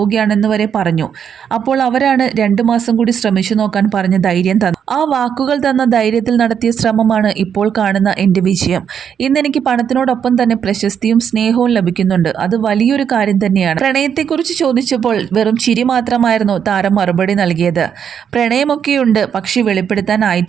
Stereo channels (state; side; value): quieter; left; 8.0 dB